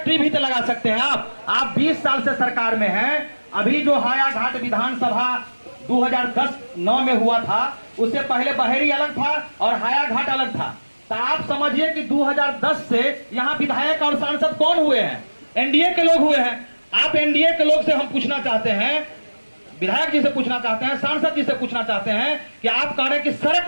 भी तो लगा सकते हैं आप 20 साल से सरकार में हैं। अभी जो हायाघाट विधानसभा 2010-9 में हुआ था, उससे पहले बहेरी अलग था और हायाघाट अलग था। तो आप समझिए कि 2010 से यहाँ विधायक और सांसद कौन हुए हैं? एनडीए के लोग हुए हैं। आप एनडीए के लोग से हम पूछना चाहते हैं, विधायक जी से पूछना चाहते हैं, सांसद जी से पूछना चाहते हैं कि आप कह रहे हैं कि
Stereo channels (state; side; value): inverted; both; correlation -1.00